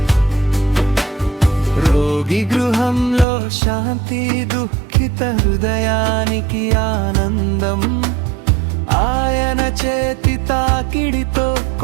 రోగి గృహంలో శాంతి, దుఃఖిత హృదయానికి ఆనందం. ఆయన చేతి తాకిడితో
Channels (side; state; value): left; drops out; at 3.2 s